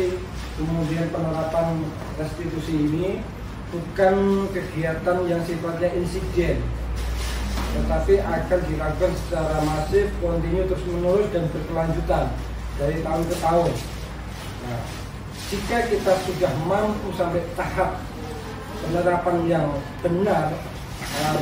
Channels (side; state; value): both; identical; correlation 1.00